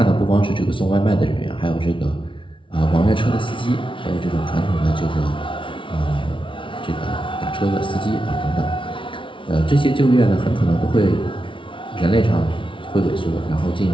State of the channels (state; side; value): late; right; 0.25 ms